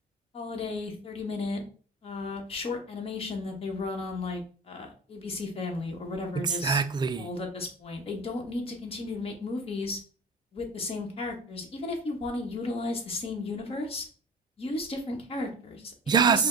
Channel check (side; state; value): both; normal; correlation 0.36